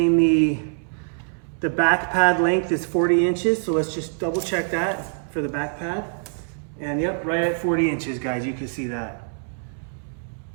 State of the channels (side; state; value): left; silent; 63 dB below the other